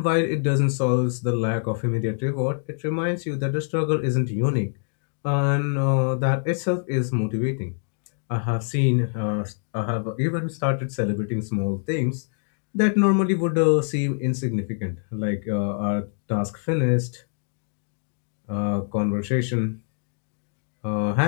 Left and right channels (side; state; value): right; silent; digital silence